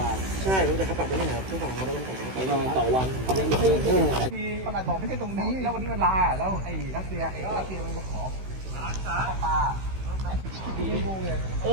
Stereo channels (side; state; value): left; late; 16 ms